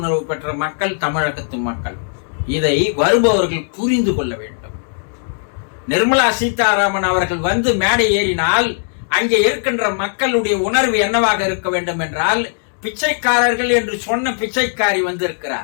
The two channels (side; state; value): right; silent; digital silence